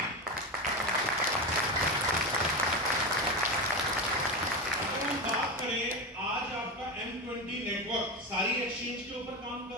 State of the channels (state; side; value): normal; both; correlation 0.18